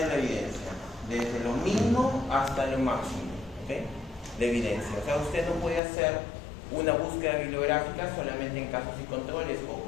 la evidencia, desde lo mínimo hasta lo máximo, ¿okay?, de evidencia. O sea, usted no puede hacer una búsqueda bibliográfica solamente en casos y controles o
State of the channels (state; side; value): drops out; right; at 5.8 s